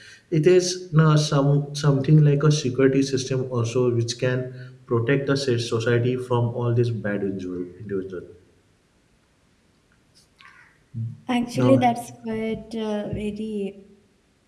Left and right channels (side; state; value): both; identical; correlation 1.00